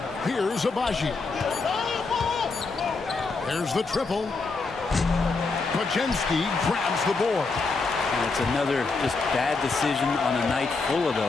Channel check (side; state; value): right; quieter; 4.1 dB